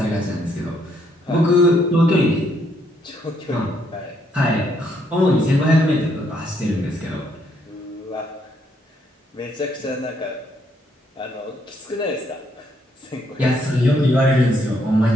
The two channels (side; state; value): both; normal; correlation 0.72